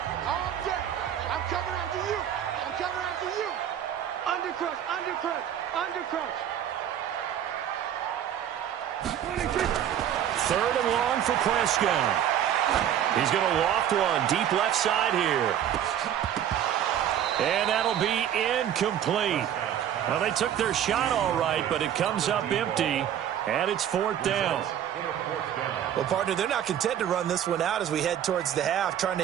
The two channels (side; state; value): left; quieter; 10.2 dB